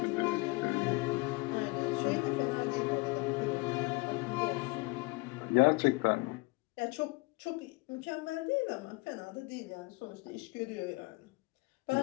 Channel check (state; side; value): quieter; right; 25.2 dB